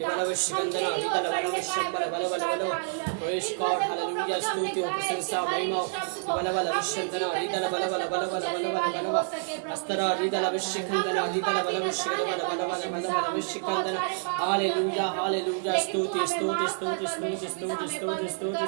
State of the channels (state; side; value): silent; left; 59 dB below the other